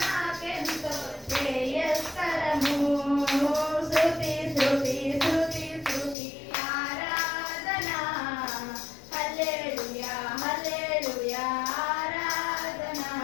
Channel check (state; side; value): drops out; right; at 6.2 s